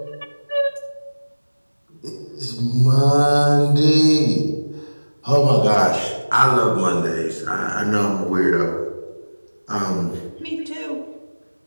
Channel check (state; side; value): inverted; both; correlation -1.00